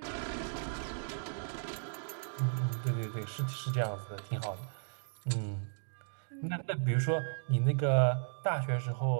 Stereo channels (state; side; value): silent; left; digital silence